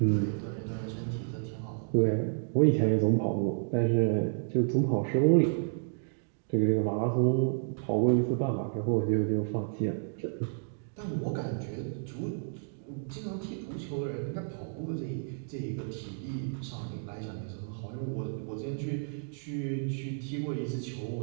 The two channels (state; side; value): silent; left; digital silence